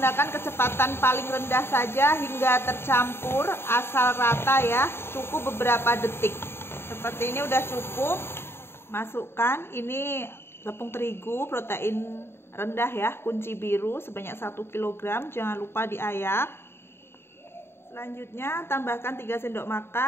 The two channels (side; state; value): right; late; 0.11 ms